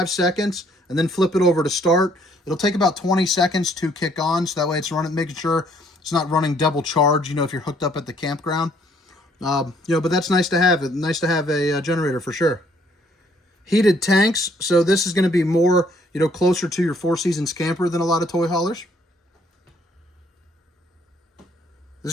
seconds and then flip it over to start. It'll take about 20 seconds to kick on, so that way it's running, making sure it's not running double charge, if you're hooked up at the campground. But that's nice to have. It's nice to have a generator for sure. Heated tanks, so this is going to be more, closer to your Four Seasons camper than a lot of toy haulers. This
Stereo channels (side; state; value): both; normal; correlation 0.64